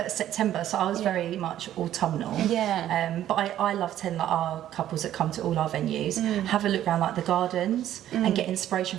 September, so I was very much autumnal. But I love telling like our couples that come to all our venues, have a look around like the gardens and get inspiration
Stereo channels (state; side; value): quieter; left; 12.1 dB